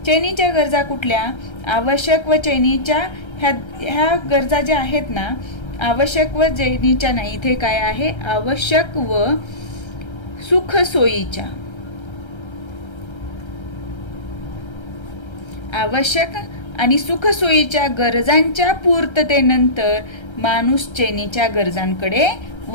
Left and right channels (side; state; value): right; late; 1.3 ms